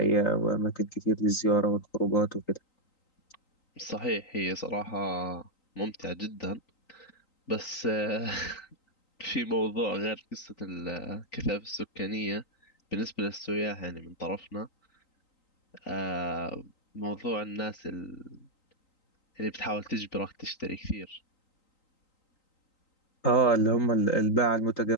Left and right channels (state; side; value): late; right; 3.9 ms